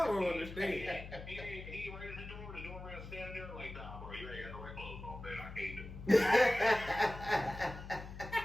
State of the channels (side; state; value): left; noise; hum, 11 dB below the sound